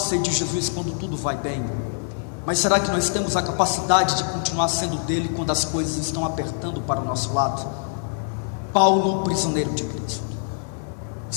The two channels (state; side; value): silent; right; 58 dB below the other